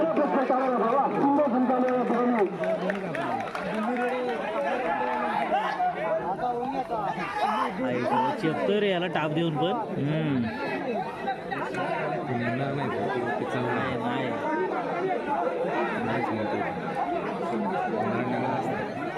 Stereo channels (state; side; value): identical; both; correlation 1.00